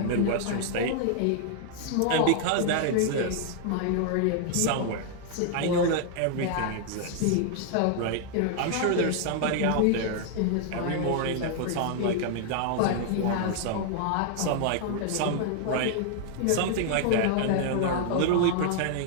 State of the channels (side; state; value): both; different; correlation 0.00